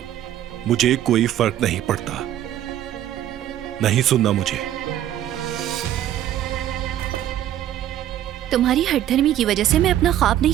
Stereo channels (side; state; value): left; quieter; 11.9 dB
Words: मुझे कोई फर्क नहीं पड़ता, नहीं सुनना मुझे। तुम्हारी हठधर्मी की वजह से मैं अपना ख्वाब